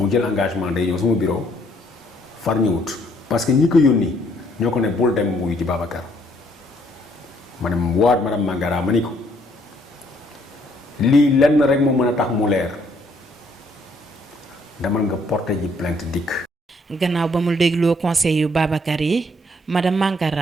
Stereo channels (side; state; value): both; normal; correlation 0.67